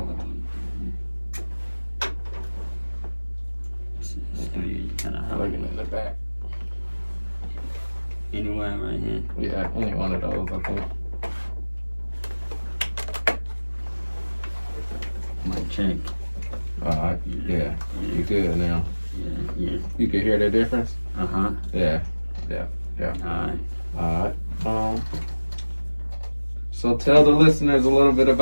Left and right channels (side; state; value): both; inverted; correlation -1.00